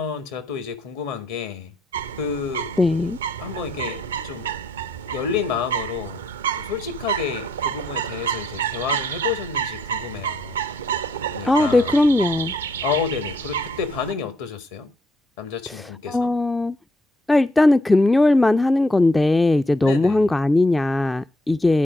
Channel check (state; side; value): normal; both; correlation 0.72